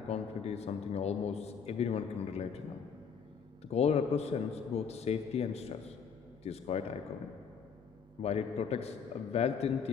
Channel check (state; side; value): quieter; right; 6.5 dB